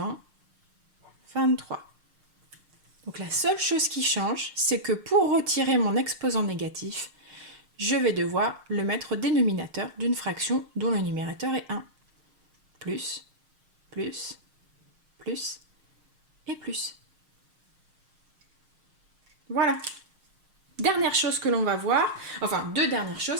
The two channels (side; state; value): left; late; 6.4 ms